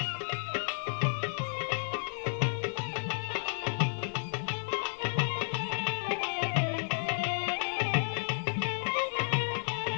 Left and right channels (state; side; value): silent; right; 56 dB below the other